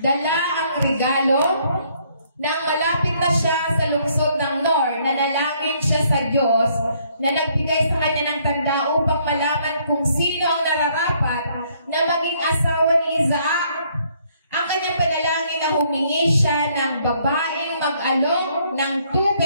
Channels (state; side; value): inverted; both; correlation -0.67